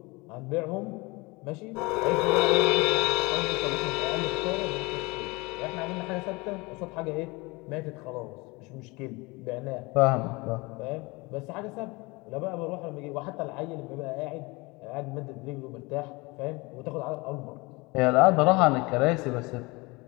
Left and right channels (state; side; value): quieter; right; 25.0 dB